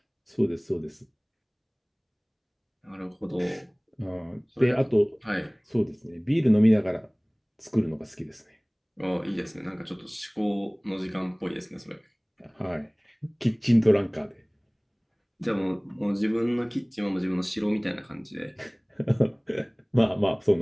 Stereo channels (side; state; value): both; identical; correlation 1.00